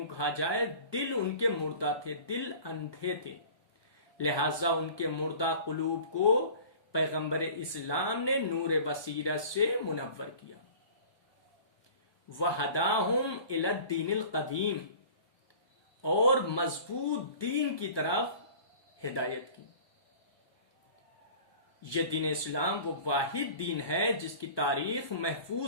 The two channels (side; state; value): right; late; 1.2 ms